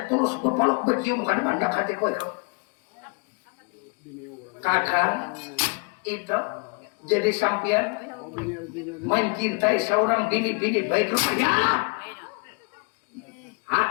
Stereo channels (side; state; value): right; quieter; 33.5 dB